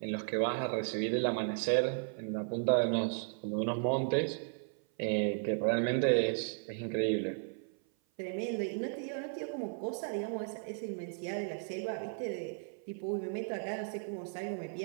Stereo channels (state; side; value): silent; left; 54 dB below the other